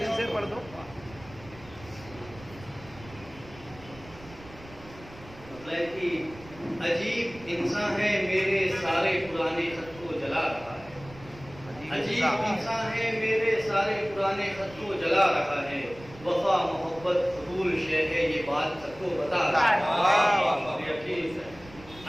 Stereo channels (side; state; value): right; noise; rumble, 19 dB below the sound